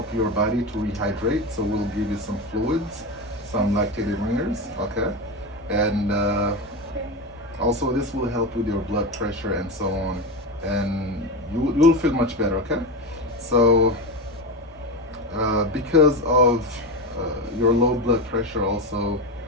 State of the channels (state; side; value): normal; both; correlation 0.19